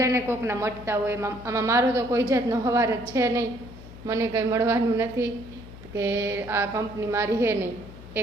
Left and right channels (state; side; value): noise; left; hum, 16 dB below the sound